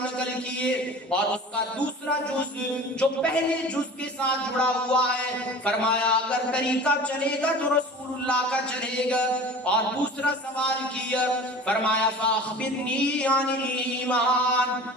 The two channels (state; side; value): normal; both; correlation 0.40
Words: نقل کیے اور اس کا دوسرا جز جو پہلے جز کے ساتھ جڑا ہوا ہے، فرمایا اگر طریقہ چلے گا تو رسول اللہ کا چلے گا. اور دوسرا سوال کیا، فرمایا فاخبرنی عن الایمان،